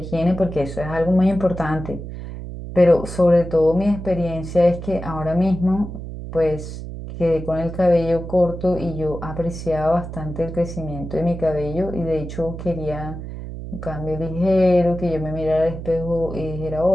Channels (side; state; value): right; noise; hum, 9 dB below the sound